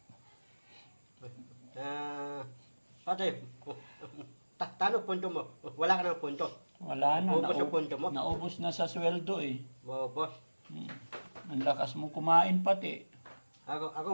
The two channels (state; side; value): inverted; both; correlation -1.00